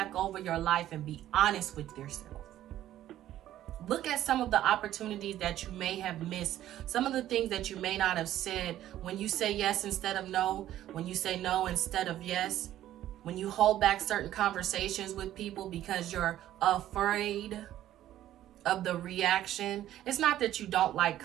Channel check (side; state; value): left; quieter; 12.9 dB